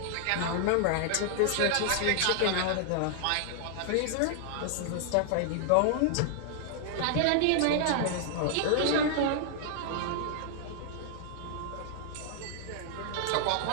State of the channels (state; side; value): different; both; correlation -0.01